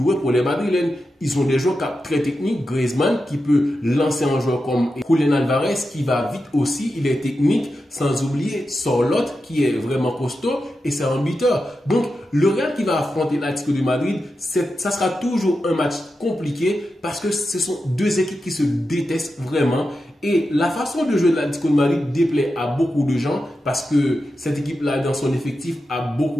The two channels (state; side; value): normal; both; correlation 0.90